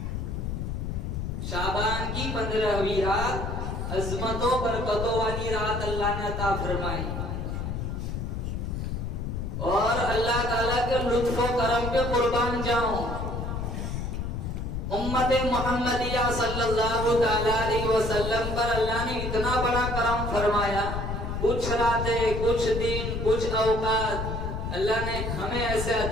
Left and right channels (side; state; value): left; noise; rumble, 3 dB below the sound